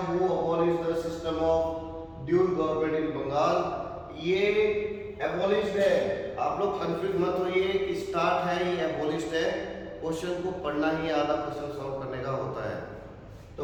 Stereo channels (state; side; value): identical; both; correlation 1.00